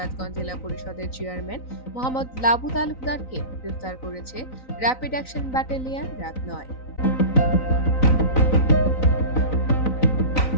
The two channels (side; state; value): right; late; 3.9 ms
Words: জেলা পরিষদের চেয়ারম্যান মোহাম্মদ লাবু তালুকদারকে গ্রেফতার করেছে র্যাপিড অ্যাকশন ব্যাটালিয়ন র্যাব ৯।